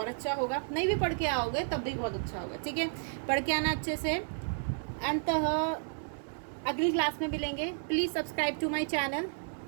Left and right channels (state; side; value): silent; left; digital silence